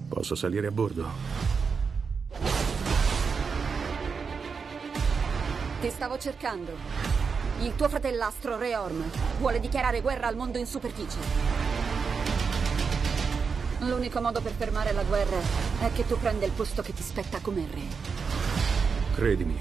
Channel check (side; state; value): left; quieter; 5.5 dB